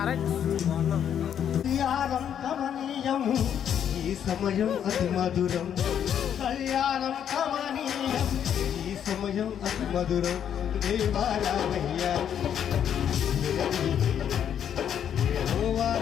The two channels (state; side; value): quieter; right; 9.1 dB